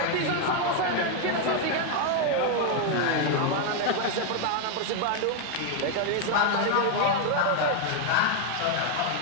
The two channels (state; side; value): different; both; correlation 0.01